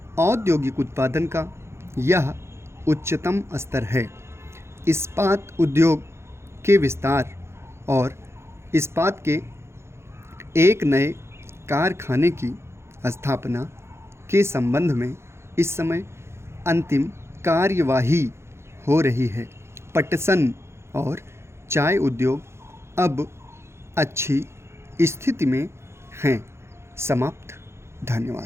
औद्योगिक उत्पादन का यह उच्चतम स्तर है। इस्पात उद्योग के विस्तार और इस्पात के एक नए कारखाने की स्थापना के संबंध में इस समय अंतिम कार्यवाही हो रही है। पटसन और चाय उद्योग अब अच्छी स्थिति में हैं। समाप्त।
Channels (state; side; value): late; left; 0.13 ms